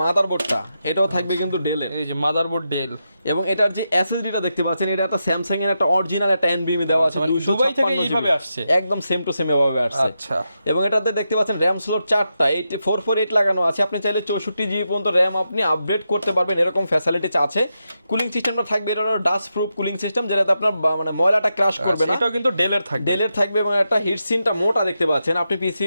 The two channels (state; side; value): inverted; both; correlation -0.86